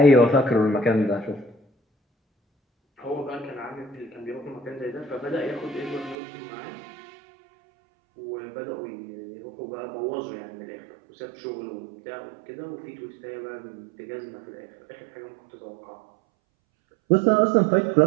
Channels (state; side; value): drops out; left; at 6.2 s